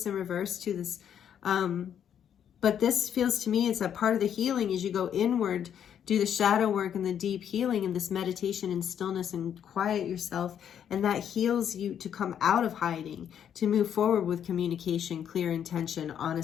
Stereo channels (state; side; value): quieter; right; 9.1 dB